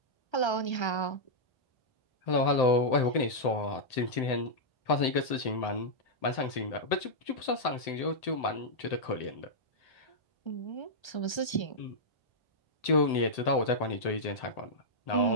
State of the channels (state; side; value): late; right; 1.3 ms